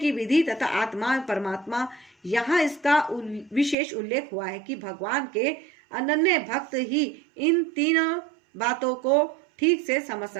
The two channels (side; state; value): left; drops out; at 3.8 s